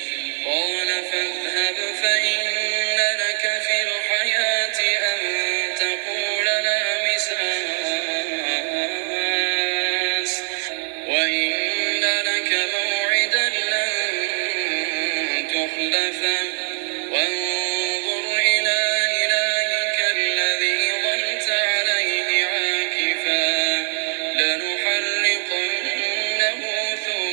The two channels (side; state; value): left; silent; digital silence